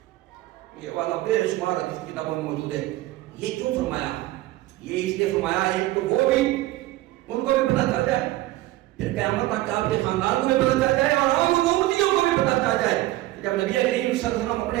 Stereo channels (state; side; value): quieter; left; 16.9 dB